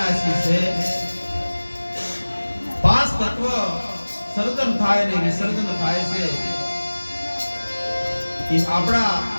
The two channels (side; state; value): both; inverted; correlation -1.00